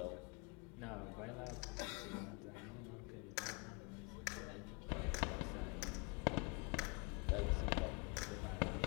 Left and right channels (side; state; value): right; quieter; 31.3 dB